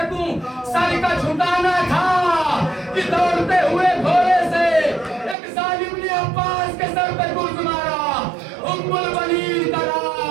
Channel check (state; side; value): drops out; left; at 5.4 s